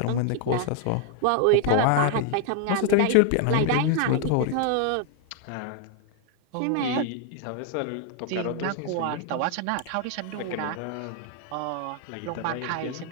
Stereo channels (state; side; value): different; both; correlation 0.00